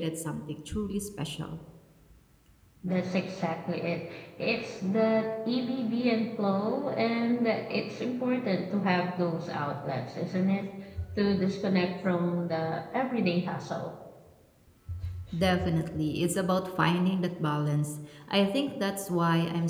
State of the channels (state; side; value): identical; both; correlation 1.00